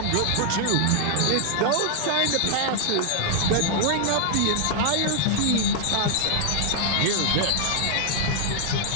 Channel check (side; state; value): both; different; correlation 0.00